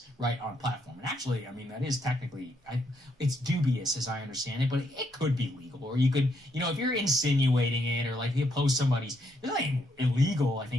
right, on platform. And actually, I mean, that is technically, it's dubious, as I understand it, but it could be legal. Or you could, you know, if you're insinuating it, or like you post somebody's, there's nothing illegal, I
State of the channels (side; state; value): both; normal; correlation 0.75